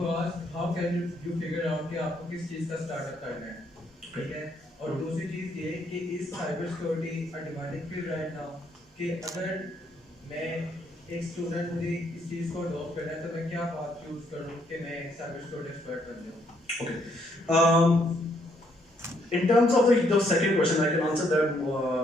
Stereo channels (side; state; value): both; normal; correlation 0.71